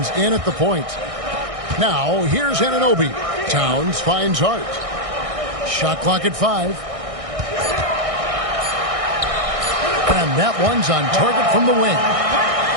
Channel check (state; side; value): late; left; 1.6 ms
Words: in at the point. Now, here's Anunoby. Towns finds Hart. Shot clock at 5. And that one's on target from the wing.